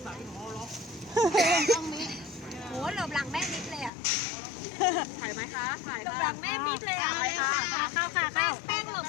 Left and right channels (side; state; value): right; drops out; at 3.9 s